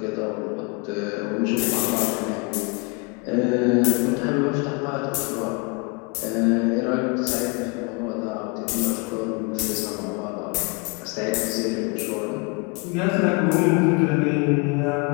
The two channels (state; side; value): quieter; right; 30.4 dB